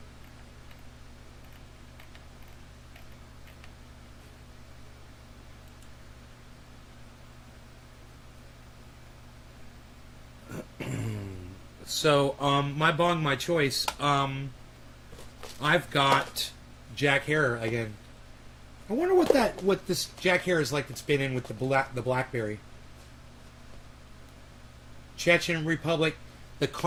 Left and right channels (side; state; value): both; identical; correlation 1.00